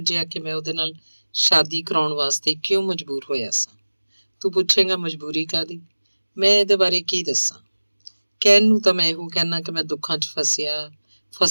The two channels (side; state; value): both; inverted; correlation -1.00